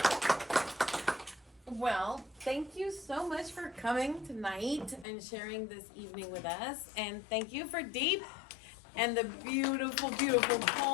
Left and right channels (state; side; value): drops out; right; at 5.1 s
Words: Well, thank you so much for coming tonight and sharing this evening with us. And thank you for D.E.E.P and the beautiful, beautiful